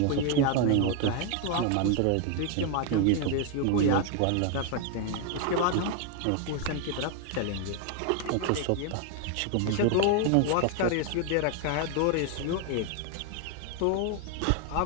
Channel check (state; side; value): different; both; correlation 0.01